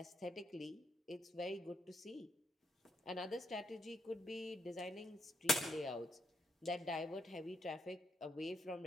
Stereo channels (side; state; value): both; normal; correlation 0.77